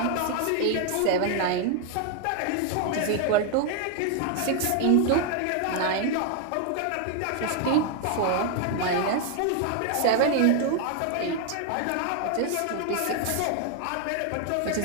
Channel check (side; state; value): both; different; correlation 0.01